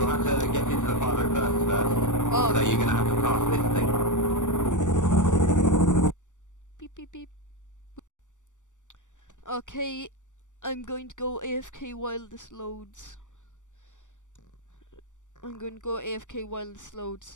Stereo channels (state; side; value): late; right; 0.86 ms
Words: have to get into the pilot first. Oh, So you're gonna have to pass this thing. beep beep beep. Okay, I'm going to go AFK while this loads.